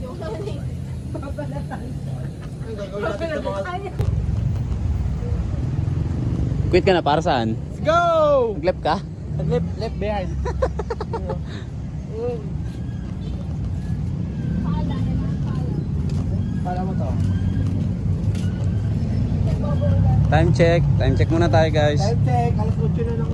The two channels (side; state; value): both; identical; correlation 1.00